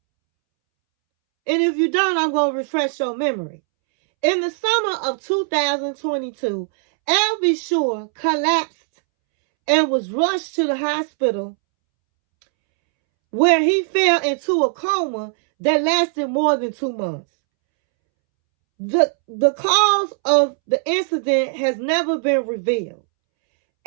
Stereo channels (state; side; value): silent; left; 66 dB below the other